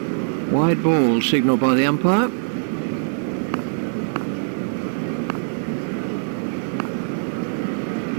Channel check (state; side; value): silent; left; digital silence